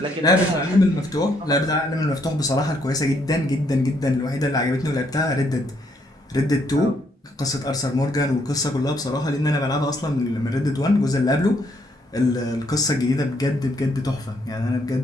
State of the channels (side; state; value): both; normal; correlation 0.71